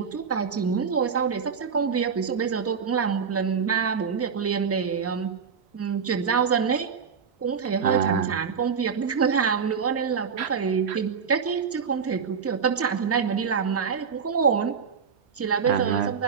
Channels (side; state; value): left; quieter; 6.3 dB